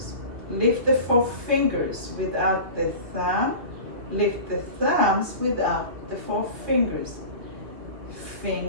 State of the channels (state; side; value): late; left; 2.7 ms